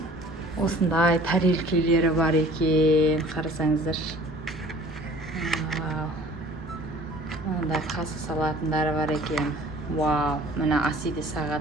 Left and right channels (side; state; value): both; normal; correlation 0.49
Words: Осындай тарелкелері бар екен. Қарасаңыздар. Мындай қасы салатындары бар екен. Вау, мына Асиде